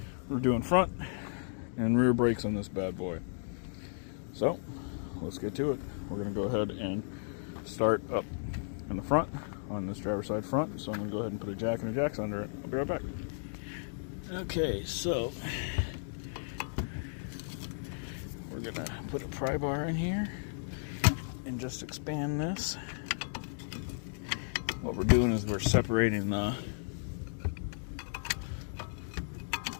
We're doing front and rear brakes on this bad boy. So, let's get to it. We're going to go ahead and start up in the front on this driver's side front. So I'm going to go ahead and put a jack and a jacks under it. I'll be right back. Okay, so we're going to put a pry bar in here and just expand this. What we're doing is we're separating the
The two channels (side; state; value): right; silent; digital silence